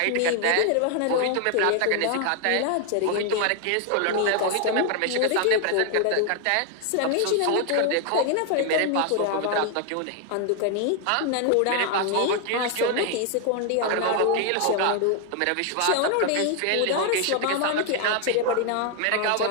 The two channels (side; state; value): both; different; correlation 0.00